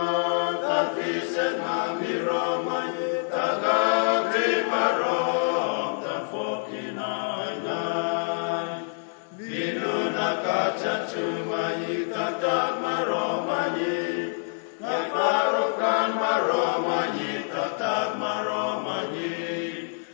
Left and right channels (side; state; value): right; silent; digital silence